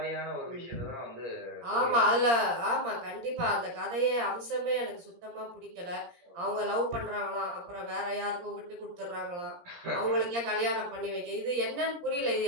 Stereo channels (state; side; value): late; left; 17 ms